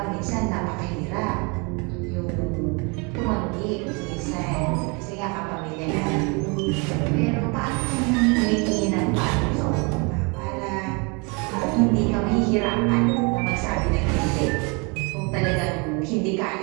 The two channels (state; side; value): quieter; left; 31.1 dB